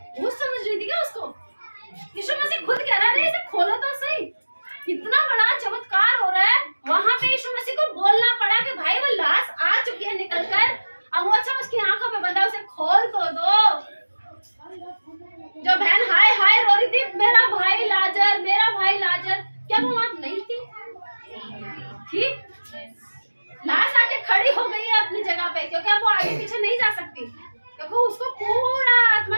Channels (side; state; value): both; inverted; correlation -1.00